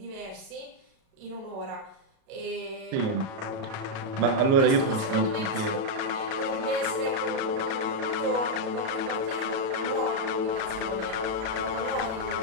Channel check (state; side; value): late; left; 37 ms